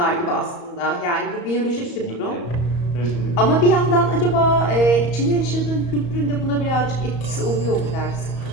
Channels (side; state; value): right; late; 34 ms